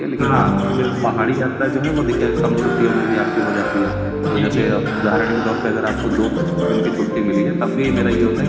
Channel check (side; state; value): both; identical; correlation 1.00